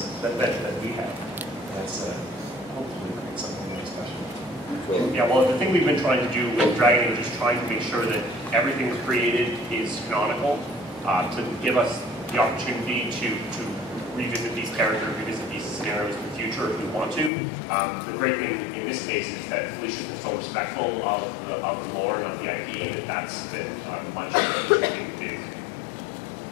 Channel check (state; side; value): drops out; right; at 17.3 s